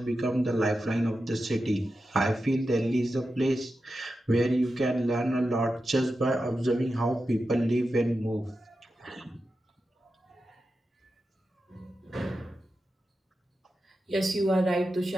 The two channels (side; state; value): both; normal; correlation 0.90